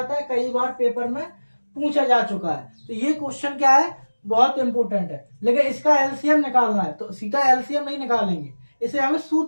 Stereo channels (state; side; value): inverted; both; correlation -1.00